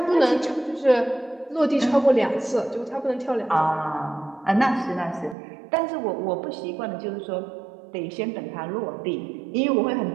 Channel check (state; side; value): drops out; left; at 5.4 s